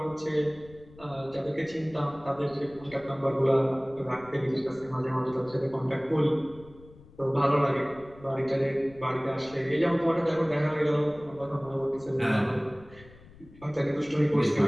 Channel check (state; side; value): noise; left; rumble, 22 dB below the sound